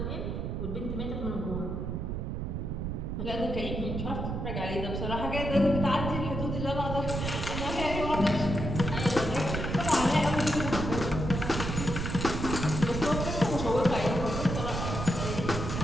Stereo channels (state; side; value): noise; right; rumble, 3 dB below the sound